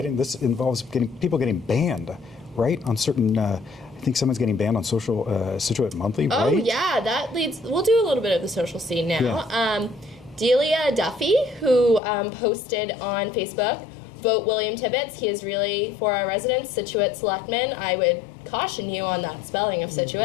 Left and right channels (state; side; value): drops out; right; at 12.0 s